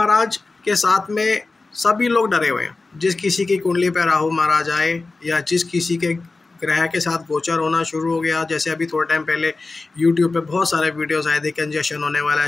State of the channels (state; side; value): quieter; right; 3.6 dB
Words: के साथ में सभी लोग डरे हुए हैं। जिस किसी की कुंडली पे राहु महाराज आए या जिस किसी के ग्रह के साथ गोचर होना शुरू हो गया, जैसे अभी थोड़े टाइम पहले यूट्यूब पे बहुत सारे वीडियोस आए थे, कंजशन होने वाला है,